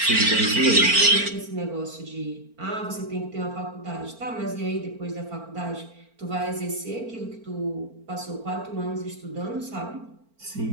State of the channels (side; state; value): left; late; 4.4 ms